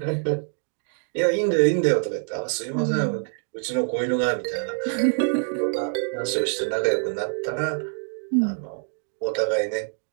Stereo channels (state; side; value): silent; left; digital silence